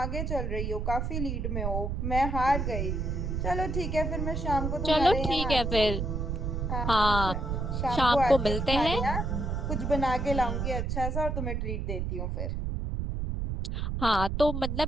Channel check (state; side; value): noise; right; rumble, 1 dB below the sound